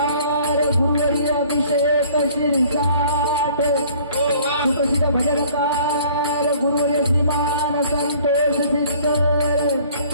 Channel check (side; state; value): both; inverted; correlation -0.54